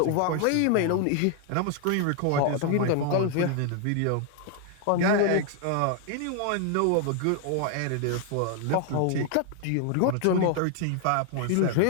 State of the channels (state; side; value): different; both; correlation 0.00